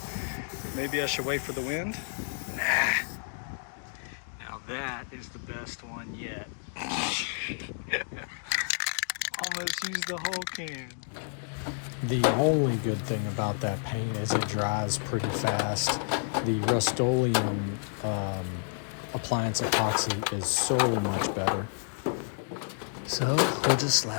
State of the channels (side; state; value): right; silent; digital silence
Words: Maybe I should wait for the wind? Nah. Now that is the best one yet. Almost used the whole can. The only good thing about that paint is it dries pretty fast. The Rust-Oleum appliance epoxy is so much better. So we'll just